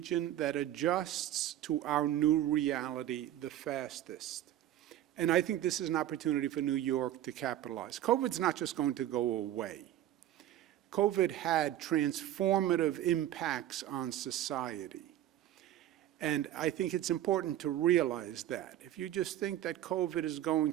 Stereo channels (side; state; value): left; quieter; 12.7 dB